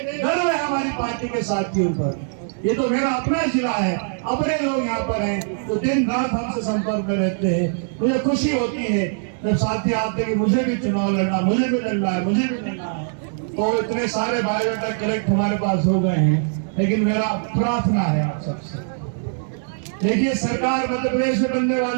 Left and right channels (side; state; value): left; silent; digital silence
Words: गर्व है हमारी पार्टी के साथियों पर। ये तो मेरा अपना जिला है, अपने लोग यहाँ पर हैं तो दिन रात हमसे संपर्क में रहते हैं। मुझे खुशी होती है जब साथी आते हैं कि मुझे भी चुनाव लड़ना, मुझे भी लड़ना है, मुझे भी लड़ना है। तो इतने सारे बायोडाटा कलेक्ट हमारे पास हो गए हैं, लेकिन मेरा प्रार्थना है आप सबसे, देखिए सरकार मध्य प्रदेश में बनने